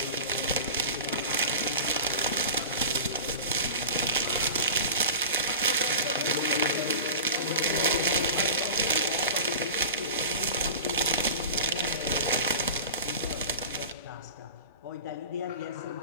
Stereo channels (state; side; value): inverted; both; correlation -0.33